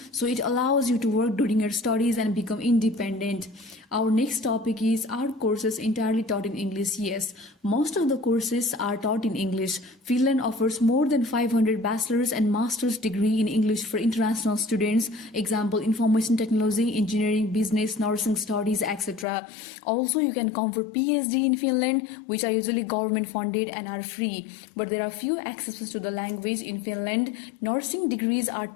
so it allows you to work during your studies and become independent. Our next topic is, are courses entirely taught in English? Yes, most of the courses are taught in English. Finland offers more than 500 bachelor's and master's degree in English for international students. Example, information technology, engineering, business, nursing studies, etc. Also, you can come for PhD in Finland, which are usually government funded and are free. But there are few exceptions to the language in Finland. Nursing degrees are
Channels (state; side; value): drops out; right; at 19.2 s